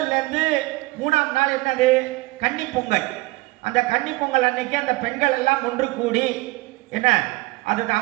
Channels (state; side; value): quieter; left; 21.8 dB